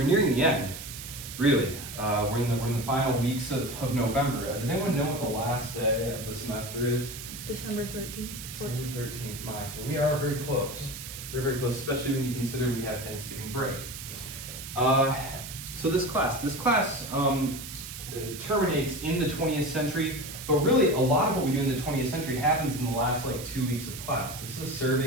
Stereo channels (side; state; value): right; noise; hiss, 10 dB below the sound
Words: nearing the end, really. We're in the final weeks of November. Does anyone know what the last day of the semester is? December 13th. December 13th, so we are very close. Very, very close, especially when you consider we have Thanksgiving break. So this class terminates in the 20th century, but really a lot of what we do in the 20th century happens in the last 2 weeks of class. This is a